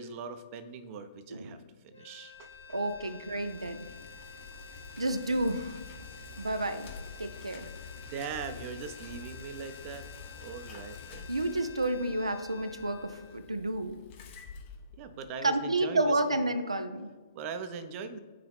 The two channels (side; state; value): both; inverted; correlation -0.72